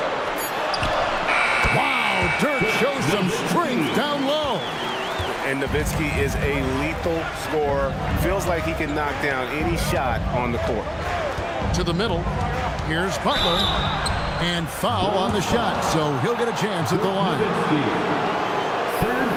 Wow, Dirk shows some strength down low. And Nowitzki is a lethal scorer. Feels like he can knock down any shot on the court. To the middle. Here's Butler. And foul on the shot, so he'll get a chance at the line. Third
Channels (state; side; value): identical; both; correlation 1.00